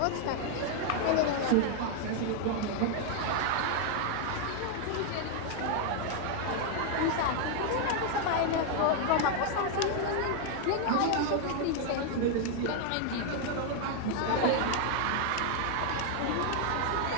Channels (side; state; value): both; different; correlation 0.00